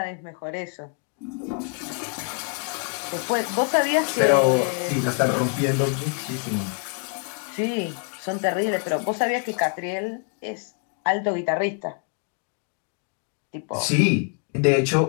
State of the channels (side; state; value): right; quieter; 39.6 dB